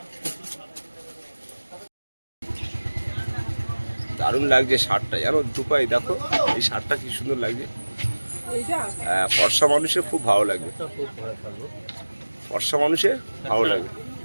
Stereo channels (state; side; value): inverted; both; correlation -1.00